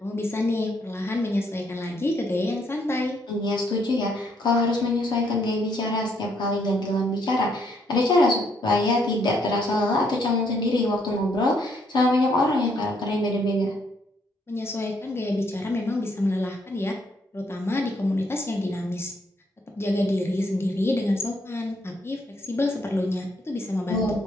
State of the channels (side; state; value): both; normal; correlation 0.71